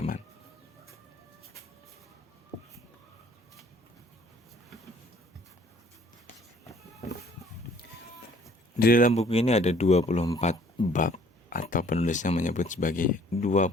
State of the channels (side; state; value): both; normal; correlation 0.57